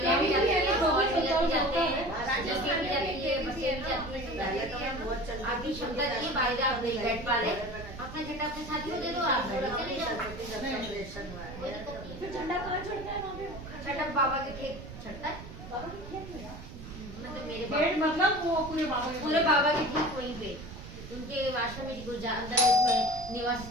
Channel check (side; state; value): right; noise; rumble, 13 dB below the sound